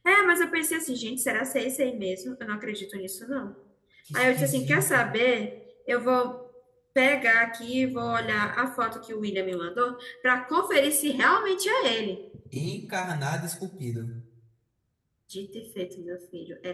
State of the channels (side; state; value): both; identical; correlation 1.00